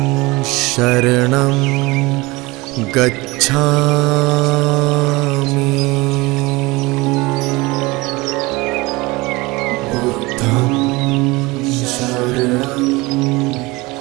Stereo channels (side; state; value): left; quieter; 23.0 dB